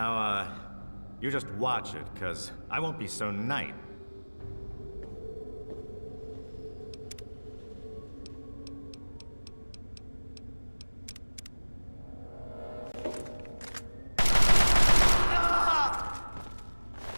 you just watch it, 'cause I won't be so nice.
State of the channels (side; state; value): both; inverted; correlation -1.00